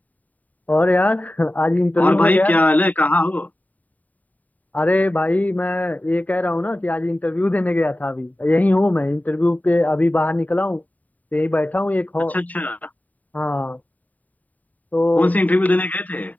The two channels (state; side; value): late; right; 0.075 ms